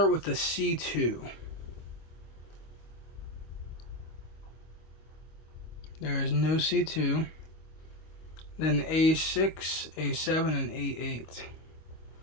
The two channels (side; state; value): right; late; 25 ms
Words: with the C2. There is no C2. Then A6, A7, and A8.